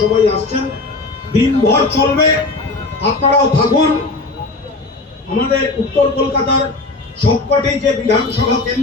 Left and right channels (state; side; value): quieter; right; 3.4 dB